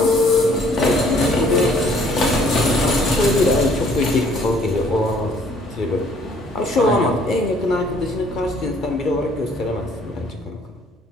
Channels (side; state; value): both; normal; correlation 0.60